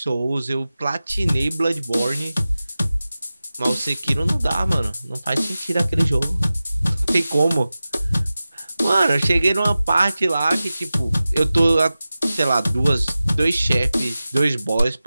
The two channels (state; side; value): inverted; both; correlation -0.95